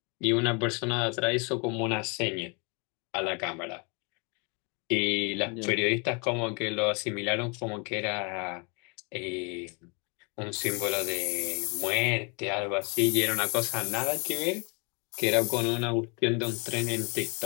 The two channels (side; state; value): right; quieter; 33.3 dB